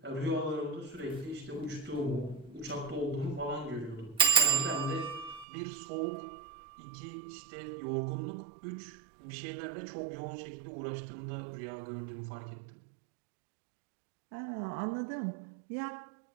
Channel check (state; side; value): drops out; left; at 5.5 s